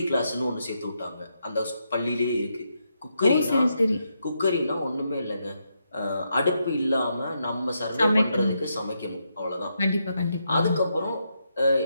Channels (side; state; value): both; inverted; correlation -0.82